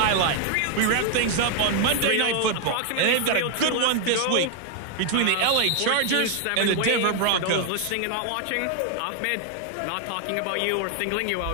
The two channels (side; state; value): both; different; correlation 0.00